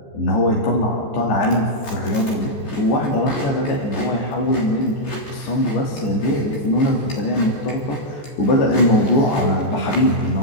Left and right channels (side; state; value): right; late; 14 ms